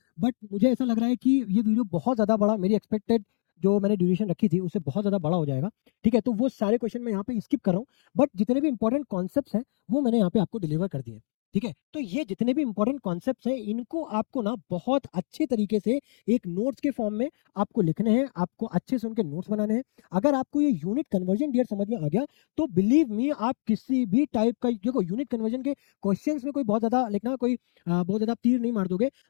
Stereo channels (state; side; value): silent; right; digital silence